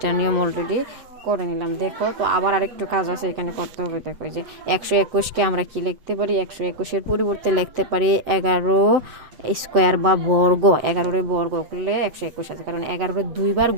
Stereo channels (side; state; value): left; late; 7.6 ms